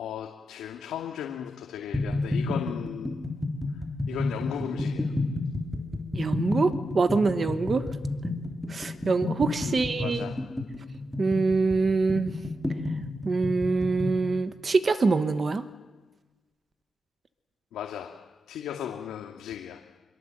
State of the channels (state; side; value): normal; both; correlation 0.88